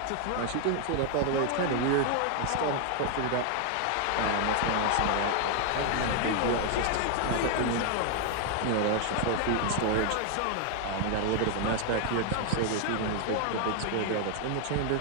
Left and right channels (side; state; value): both; different; correlation 0.00